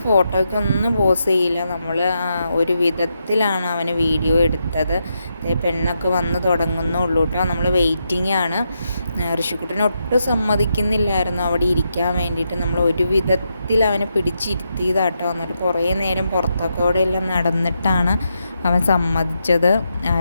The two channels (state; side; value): inverted; both; correlation -0.83